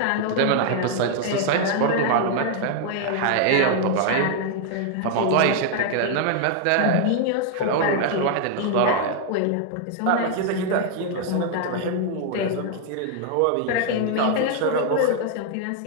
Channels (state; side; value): different; both; correlation 0.00